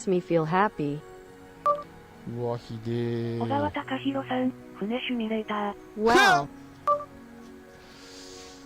me feel happy. うわ、ひで小川ー。隆弘さん、船シミュレーター。 Wow.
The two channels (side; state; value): both; identical; correlation 1.00